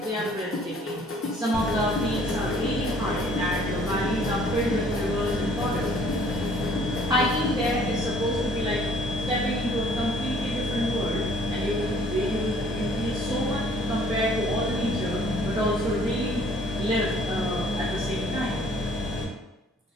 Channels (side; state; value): both; normal; correlation 0.58